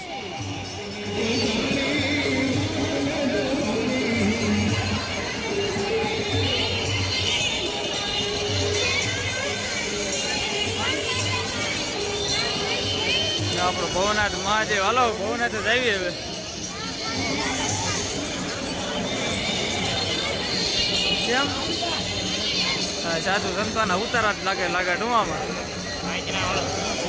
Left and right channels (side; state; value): both; identical; correlation 1.00